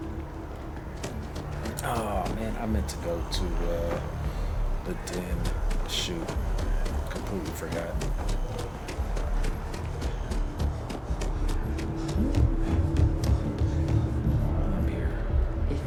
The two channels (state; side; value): identical; both; correlation 1.00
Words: Oh man, I meant to go to the den. Shoot, completely forgot. I'm here. If